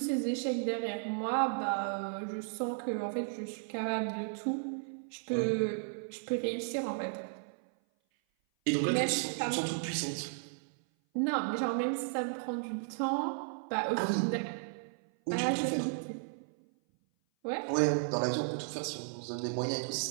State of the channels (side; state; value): left; silent; 55 dB below the other